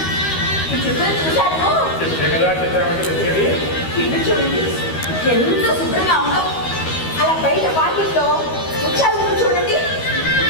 ఈ చిత్రం చూశాను. చెప్పే కదా చిత్రం అంటే తెచ్చేది. ఇల్లు చూడండి ఎంత శుభ్రంగా ఉందో. అలా బయట వాకిట్లో ముత్యాలు చూడండి.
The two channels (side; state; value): right; late; 13 ms